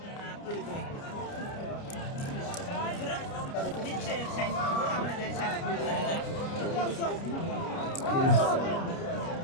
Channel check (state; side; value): late; right; 29 ms